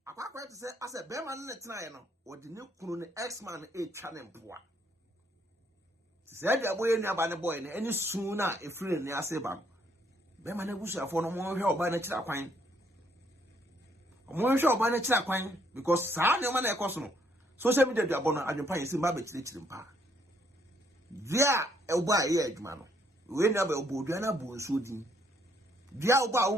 akwa to say ase be man ne tena no odi ne kunu ne x-man e twa ne mpoa se dia boye ni aba ne boy ne eni sun na efiri ne ase ba be man abusuafo no mo hwe oba na kira kwan mo hwe oba na kira kwan because sa ne ma na ekoso no social media dia bono adwempa yesi ma be kire mpa dia oba ye adwuma no we never obodua na bo nso din dia oba wo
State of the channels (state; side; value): normal; both; correlation 0.69